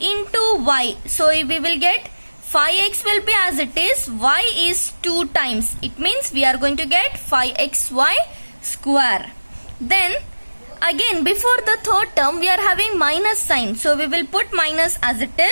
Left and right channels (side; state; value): both; inverted; correlation -1.00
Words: into y. So we will get 5x will be as it is, y is 2 times. It means we are going to get 5xy square. Then again before the third term we are having minus sign. So we will put minus as it